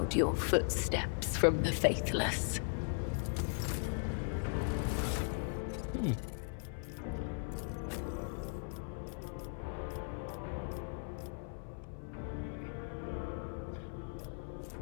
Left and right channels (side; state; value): right; silent; 52 dB below the other